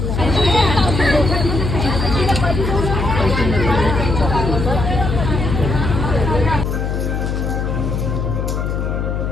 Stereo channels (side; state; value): left; noise; hum, 1 dB below the sound